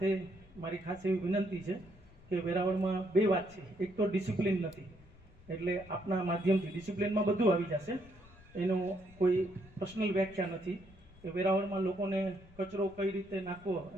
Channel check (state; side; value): noise; left; rumble, 23 dB below the sound